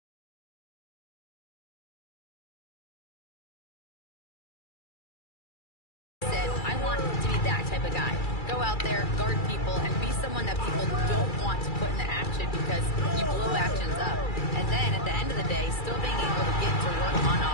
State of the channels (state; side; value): late; right; 2.3 ms